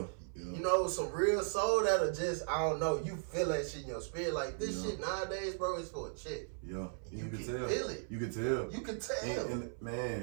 You know, some real soul that'll just, I don't know, you feel that shit in your spirit. Like, this shit nowadays, bro, is for a chick. Yeah. You can tell. feel it. You can tell. You can tell. And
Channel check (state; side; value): silent; left; 53 dB below the other